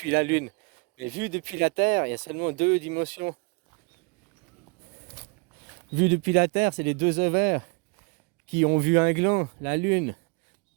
la Lune. Mais vu depuis la Terre, il y a seulement 2 dimensions. Vu depuis la Terre, c'est les 2 ovaires qui ont vu un gland, la Lune.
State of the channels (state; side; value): quieter; left; 32.5 dB